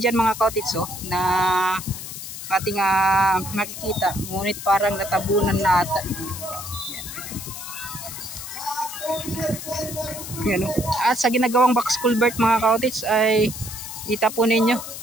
dyan mga kaotis na ating makikita. Ngunit parang natabunan na ata. Yan. At sa ginagawang Pax Culvert mga kaotis ay kita po ninyo.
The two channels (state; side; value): noise; left; hiss, 9 dB below the sound